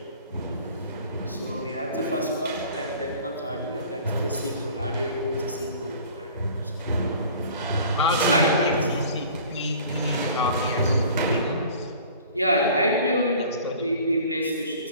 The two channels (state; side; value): inverted; both; correlation -0.47